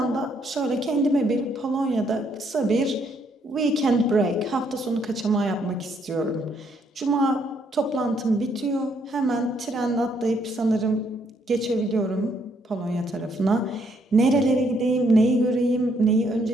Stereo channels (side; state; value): both; normal; correlation 0.71